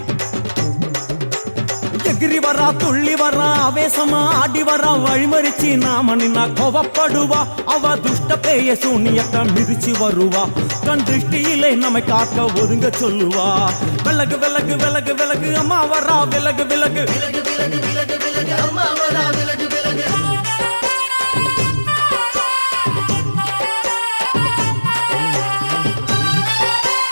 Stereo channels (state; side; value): inverted; both; correlation -1.00